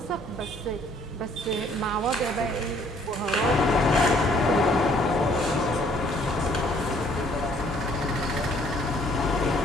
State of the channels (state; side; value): normal; both; correlation 0.62